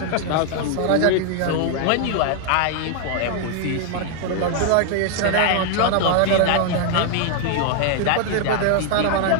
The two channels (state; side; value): different; both; correlation 0.00